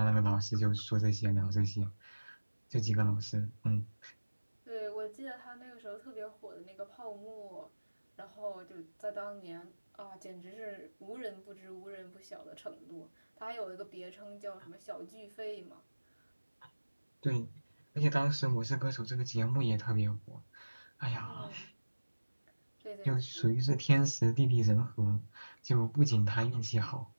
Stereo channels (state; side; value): inverted; both; correlation -1.00